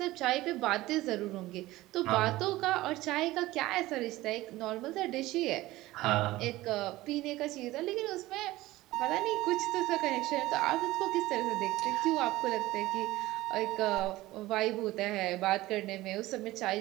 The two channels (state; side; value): quieter; left; 17.7 dB